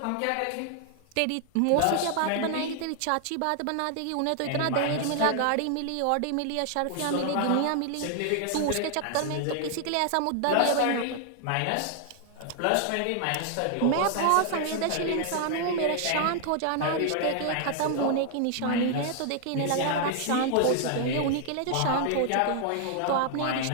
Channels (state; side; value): different; both; correlation 0.00